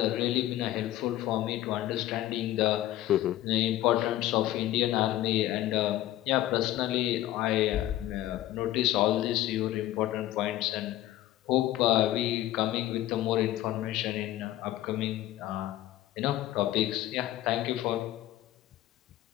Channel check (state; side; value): quieter; right; 14.5 dB